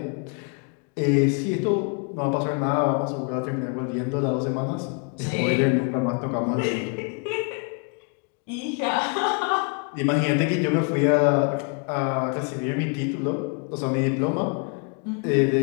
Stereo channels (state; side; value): quieter; right; 37.8 dB